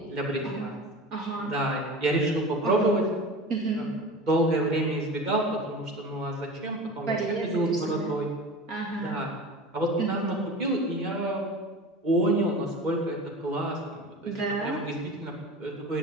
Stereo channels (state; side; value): normal; both; correlation 0.34